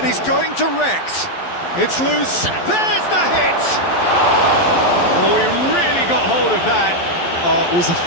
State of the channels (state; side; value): late; right; 11 ms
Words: he's going direct. It's loose. There's the hit! Oh, he really got hold of that. It was a